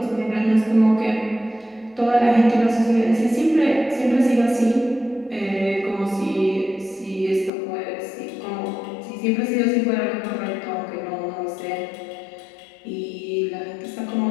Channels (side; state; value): right; drops out; at 7.5 s